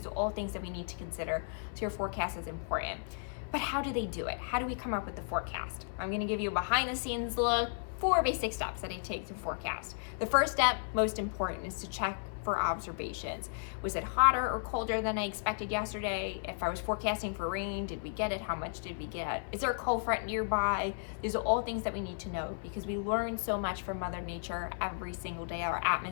are all things that we need to consider. So your forecast is important. But how do they do it? How do we come up with the forecast? I'm going to give you a behind the scenes look. 4 basic steps that I take to forecast. The first step, most important, is to check for observations. Was it hotter or colder than I expected yesterday? If I was forecasting for rain, did we get it? How much did we get? Is there a cold front nearby? These are all things that we need to know because we learn so much from Mother Nature every single day. Our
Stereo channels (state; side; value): silent; right; 55 dB below the other